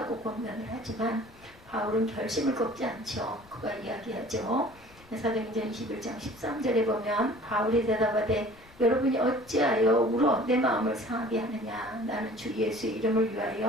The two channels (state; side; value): noise; left; rumble, 25 dB below the sound